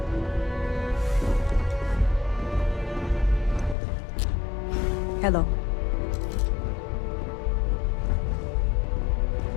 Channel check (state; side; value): drops out; right; at 3.8 s